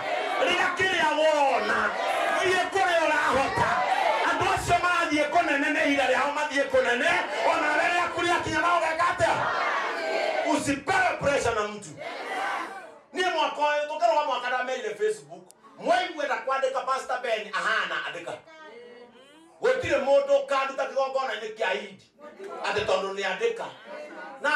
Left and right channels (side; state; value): both; identical; correlation 1.00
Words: riga kiria wona thie kuria urahota andu acio marathie kunene ni ihinda riao mathie kunene ona riria kuria kinya nao gekate usipewe pressure na mtu nie mwaka uyu tukarwa mwaka ndamerire Facebook mwaigwenda kwandika Pastor Ben ahana andika gutire mundu kanduta kigongona ni kia Idi ati tondu ni andika na